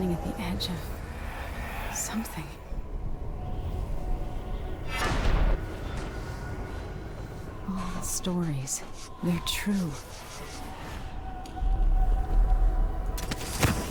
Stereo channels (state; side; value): identical; both; correlation 1.00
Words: at the edge of something. All the stories, they're true.